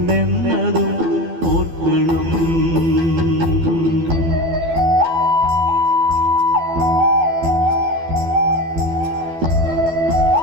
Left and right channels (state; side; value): late; left; 12 ms